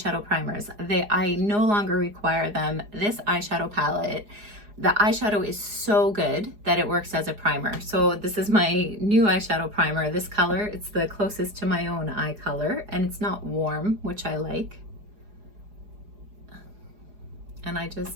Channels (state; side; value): late; left; 4.8 ms